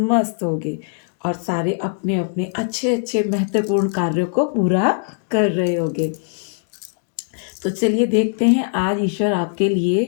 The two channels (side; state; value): right; silent; digital silence